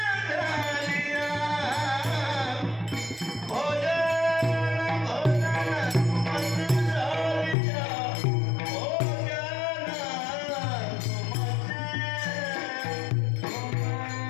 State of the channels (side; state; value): right; drops out; at 7.6 s